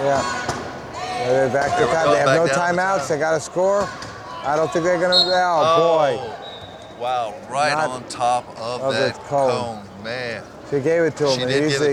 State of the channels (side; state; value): both; identical; correlation 1.00